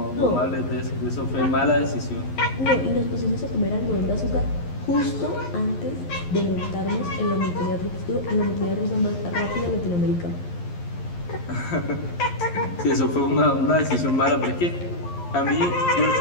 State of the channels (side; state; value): right; late; 11 ms